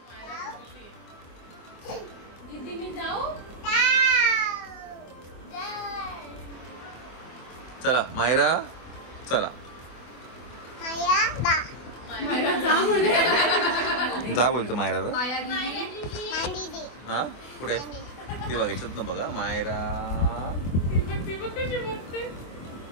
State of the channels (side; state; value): right; late; 24 ms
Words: दीदी मी जाऊ. चला मायरा चला. जा बोलतो मायराला. हा कुठे ती बघायचं ना. बघा मायरा.